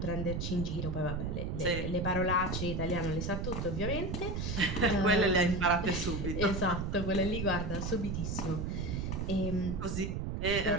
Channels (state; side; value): noise; right; rumble, 2 dB below the sound